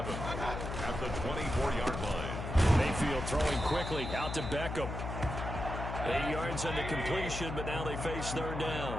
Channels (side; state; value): left; noise; hum, 5 dB below the sound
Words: at the 24-yard line. Mayfield throwing quickly out to Beckham. 8 yards on the completion, but now they face 3rd